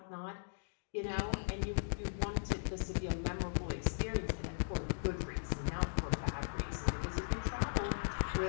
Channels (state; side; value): silent; right; digital silence